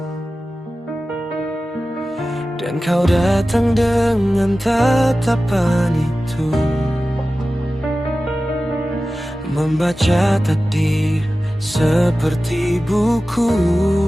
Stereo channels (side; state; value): both; normal; correlation 0.95